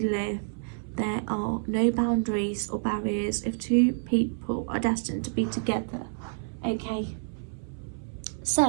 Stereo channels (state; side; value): silent; left; 59 dB below the other